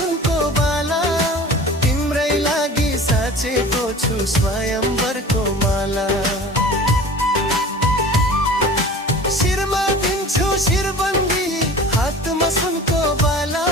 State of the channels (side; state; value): both; normal; correlation 0.40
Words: बाला। तिम्रै लागि साचेको छु स्वयंवरको माला। शिरमा दिन्छु शिरबन्दी, हातमा सुनको बाला।